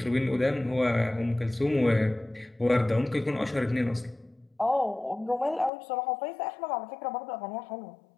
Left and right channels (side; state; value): right; drops out; at 5.7 s